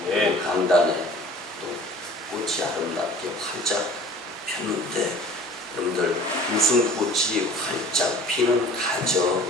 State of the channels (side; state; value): both; normal; correlation 0.47